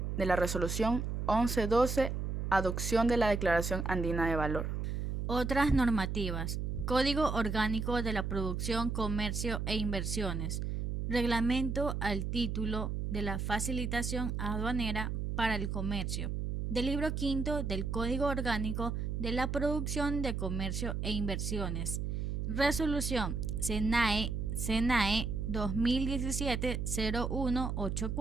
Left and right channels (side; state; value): right; noise; hum, 2 dB below the sound